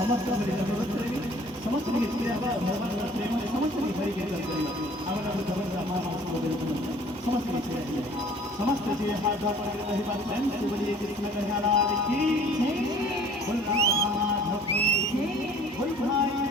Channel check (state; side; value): normal; both; correlation 0.52